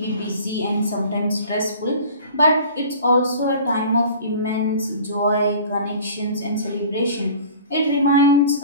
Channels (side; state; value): both; inverted; correlation -0.43